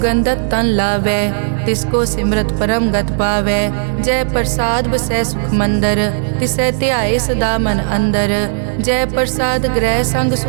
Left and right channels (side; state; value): left; silent; digital silence